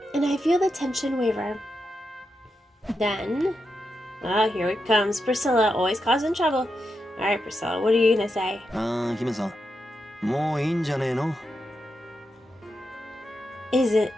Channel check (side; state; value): both; normal; correlation 0.86